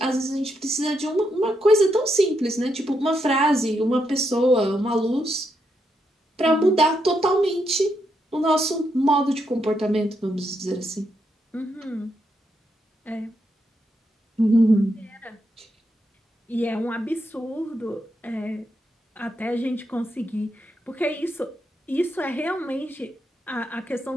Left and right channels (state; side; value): normal; both; correlation 0.80